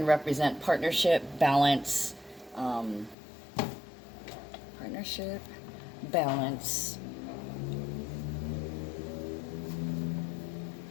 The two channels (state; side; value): drops out; right; at 3.2 s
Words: represent partnership, balance,